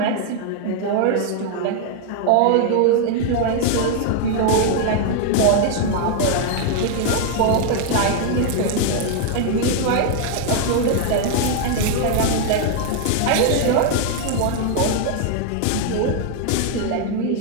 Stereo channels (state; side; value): different; both; correlation 0.00